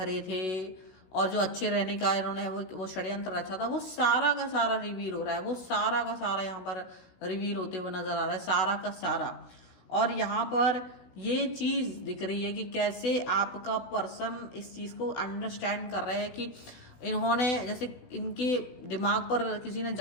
थे, और जो अच्छे रहने का इन्होंने वो षड्यंत्र रचा था, वो सारा का सारा रिवील हो रहा है, वो सारा का सारा यहाँ पर रिवील होते हुए नजर आ रहा है, सारा का सारा। और यहाँ पर ये चीज दिख रही है कि कैसे आपका पर्सन इस चीज को अंडरस्टैंड कर रहे हैं कि इन्होंने जैसे इनके दिमाग पर किसी ने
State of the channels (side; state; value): right; late; 16 ms